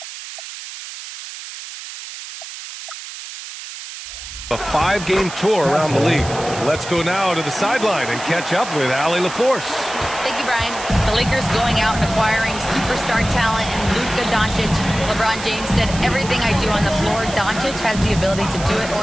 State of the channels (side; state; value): right; noise; hiss, 11 dB below the sound